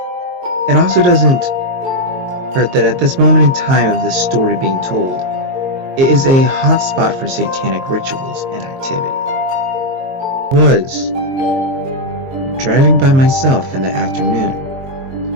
It also doesn't hurt that at this moment in time of this story being told, it is a hot spot for satanic rituals and activity. I was driving by myself in the afternoon.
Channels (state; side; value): late; left; 22 ms